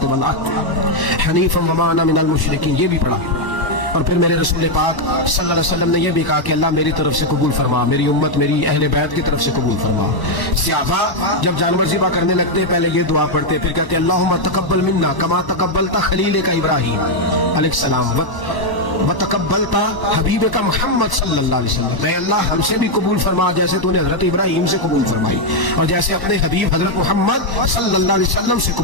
वल अर्द हनीफ़न वमा अना मिनल मुशरिकीन, ये भी पढ़ा। और फिर मेरे रसूल पाक सल्लल्लाहु अलैहि वसल्लम ने यह भी कहा कि अल्लाह मेरी तरफ से कबूल फरमा, मेरी उम्मत, मेरी अहले बैत की तरफ से कबूल फरमा। सहाबा जब जानवर ज़िबा करने लगते पहले ये दुआ पढ़ते, फिर कहते अल्लाहुम्मा तक़ब्बल मिन्ना कमा तक़ब्बलता खलील का इब्राहीम अलैहिस्सलाम व तक़ब्बलता हबीब का मोहम्मद सल्लल्लाहु अलैहि वसल्लम, मैं अल्लाह हमसे भी कबूल फरमा जैसे तूने हजरत इब्राहीम से कबूल फरमाई और जैसे अपने हबीब हजरत मोहम्मद सल्लल्लाहु अलैहि वसल्लम से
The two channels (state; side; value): late; right; 1.0 ms